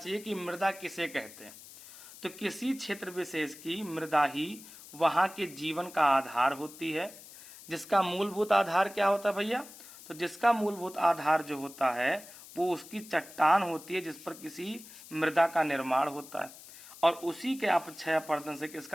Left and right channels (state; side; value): noise; left; hiss, 18 dB below the sound